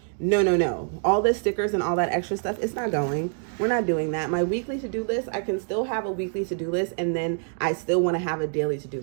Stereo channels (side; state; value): left; silent; 61 dB below the other